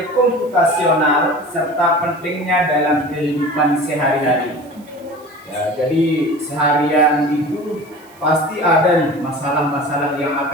komputasional serta pentingnya dalam kehidupan sehari-hari. Ya, jadi seharian itu pasti ada nih masalah-masalah yang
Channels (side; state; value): right; noise; hiss, 28 dB below the sound